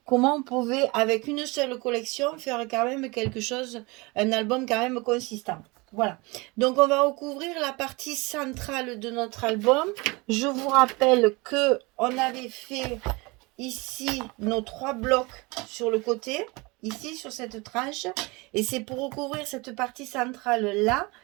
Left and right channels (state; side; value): quieter; left; 25.6 dB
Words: comment on pouvait, avec une seule collection, faire quand même quelque chose, un album quand même consistant. Voilà, donc on va recouvrir la partie centrale de notre album. Je vous rappelle que on avait fait ici nos 3 blocs sur le côté, ici sur cette tranche, et c'est pour recouvrir cette partie centrale là